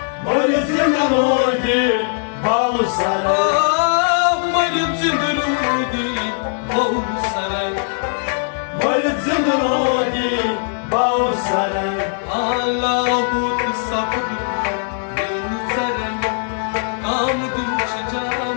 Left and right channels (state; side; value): silent; right; digital silence